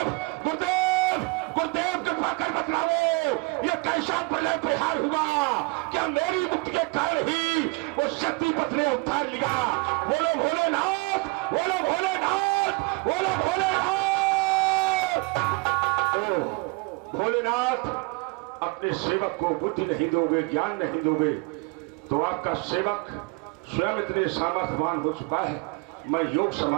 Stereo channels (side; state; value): left; quieter; 27.5 dB